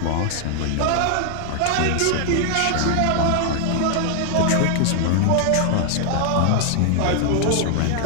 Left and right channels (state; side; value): different; both; correlation 0.00